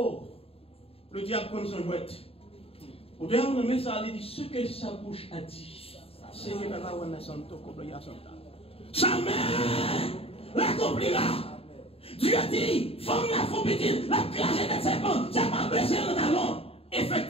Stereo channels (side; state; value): right; late; 0.28 ms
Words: le diable comme son jouette. Au dernier moment, ça a dit, ce que sa bouche a dit, c'est que la loi n'a son tour, sa mère l'accomplira. Dieu dit, femme la femme petite, la classe des serpents, ça va blesser le talon.